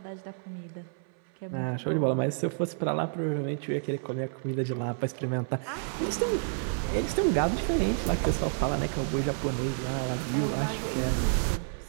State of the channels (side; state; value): left; silent; 58 dB below the other